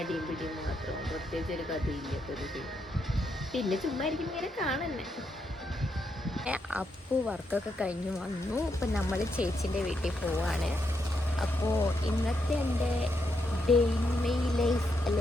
പിടിയും മാത്രം, പ്രത്യേകിച്ച് ഒരു കഥയില്ലാത്തൊരു സിനിമ. പിന്നെ ചുമ്മാ ഇരിക്കും ഇങ്ങനെ കാണുന്നെ. അപ്പു വർക്കൊക്കെ കഴിഞ്ഞ് വന്നു. ഇപ്പം നമ്മൾ ചേച്ചീൻ്റെ വീട്ടിൽ പോവാണ്. അപ്പോൾ ഇന്നത്തെ എൻ്റെ ഡേ ഇൻ മൈ ലൈഫ്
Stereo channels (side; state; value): both; normal; correlation 0.80